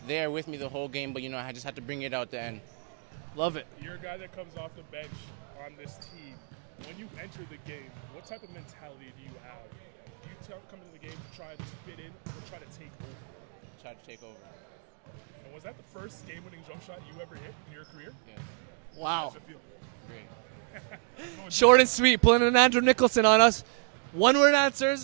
there with me the whole game, but I just had to bring it out the end. Love it. You're a guy that comes off the bench on this team. When you enter the game, what type of mentality do you have? Do you come into the game to try to just fit in or try to take over? Try to take over. And was that the first game-winning jump shot you ever hit in your career? Yes. Wow. How does it feel? Great. Short and sweet, pulling an Andrew Nicholson on us. One-word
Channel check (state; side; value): silent; left; 56 dB below the other